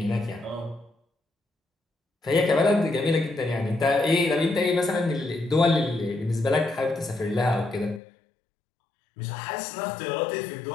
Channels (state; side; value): drops out; right; at 8.0 s